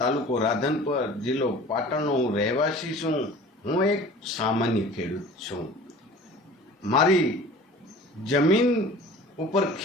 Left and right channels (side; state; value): both; normal; correlation 0.43